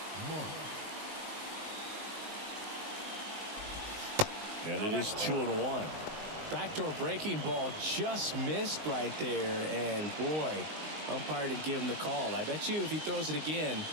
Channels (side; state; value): left; late; 19 ms